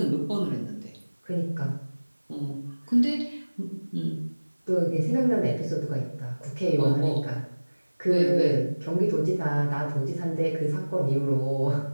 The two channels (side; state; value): both; inverted; correlation -1.00